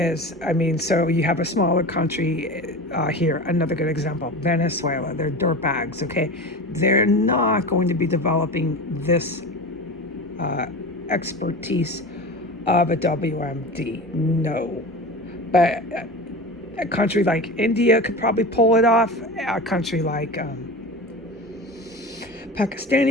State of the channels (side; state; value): both; normal; correlation 0.30